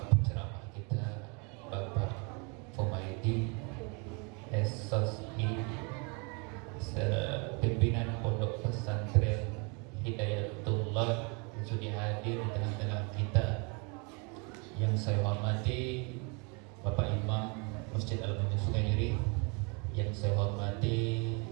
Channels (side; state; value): left; quieter; 32.8 dB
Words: penceramah kita, Bapak Fumaidi SOSI, pimpinan Pondok Pesantren Hidayatullah yang sudah hadir di tengah-tengah kita. Yang saya hormati Bapak Imam Masjid Al-Mu'min Sungai Nyeri, yang saya hormati